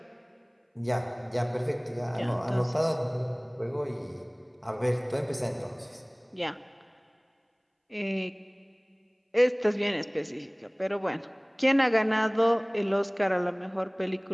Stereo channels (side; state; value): both; identical; correlation 1.00